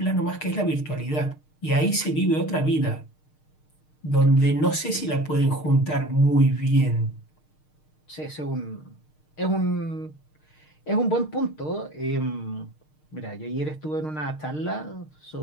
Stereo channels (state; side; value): late; right; 6.5 ms